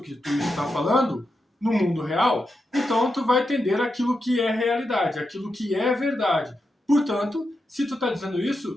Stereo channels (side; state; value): both; normal; correlation 0.87